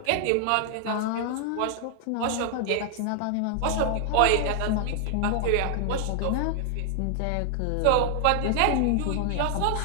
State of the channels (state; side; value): different; both; correlation 0.00